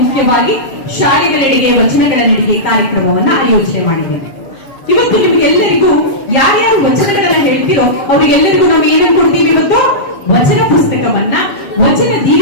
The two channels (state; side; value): late; right; 7.4 ms